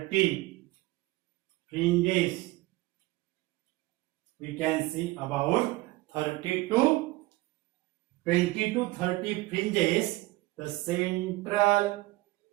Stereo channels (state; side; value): quieter; left; 20.1 dB